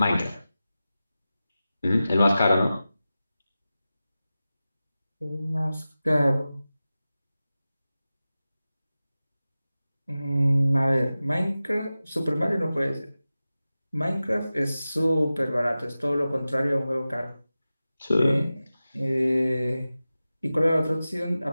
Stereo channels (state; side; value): inverted; both; correlation -0.95